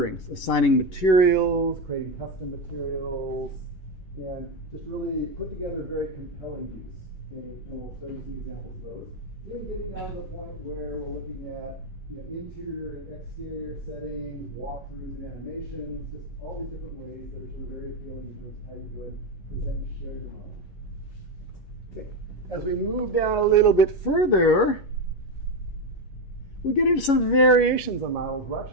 assigning materials, creating custom materials, and just really put together very compelling views. And we'll show you some examples of those. Even getting down to the point where we're looking at interior and exterior settings, walkthroughs and animations, just all these different ways that are sort of very appealing in terms of how you go and present and share your model. Okay. As we move down a little bit further, we get into some variations on models. We're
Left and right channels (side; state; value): right; late; 11 ms